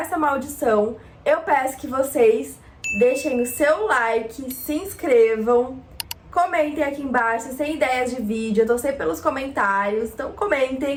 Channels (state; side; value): identical; both; correlation 1.00